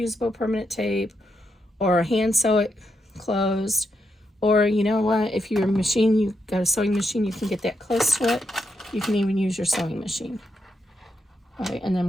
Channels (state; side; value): normal; both; correlation 0.82